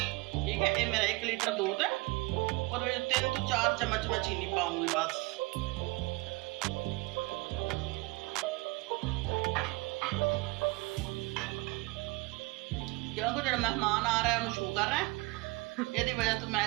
ठीक है। ये मेरा 1 लीटर दूध है और 3 तो 4 चम्मच मैं चीनी पाऊंगी बस। क्योंकि जो मेहमान आ रहा है उन्होंने शुगर है, यदि वजह तो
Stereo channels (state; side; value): quieter; left; 24.7 dB